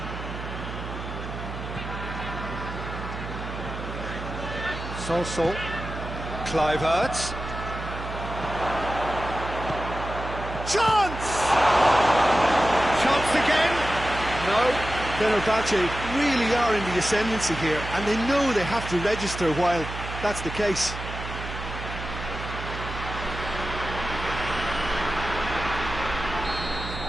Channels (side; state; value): right; noise; hum, 8 dB below the sound